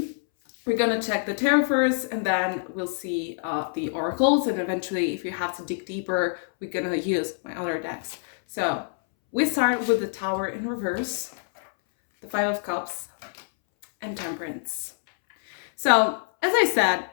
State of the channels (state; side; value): silent; right; 61 dB below the other